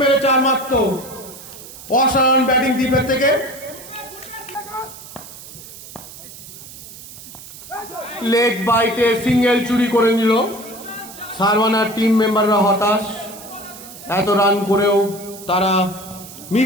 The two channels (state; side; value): noise; right; hiss, 16 dB below the sound